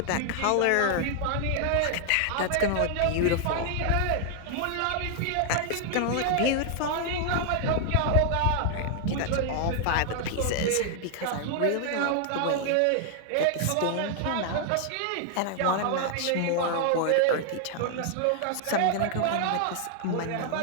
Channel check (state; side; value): different; both; correlation 0.00